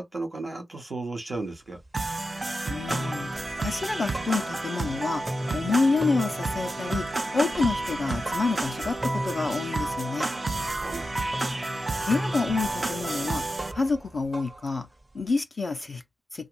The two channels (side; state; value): both; normal; correlation 0.91